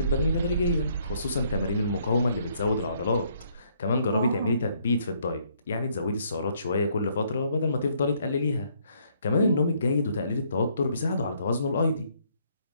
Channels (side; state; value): both; inverted; correlation -0.68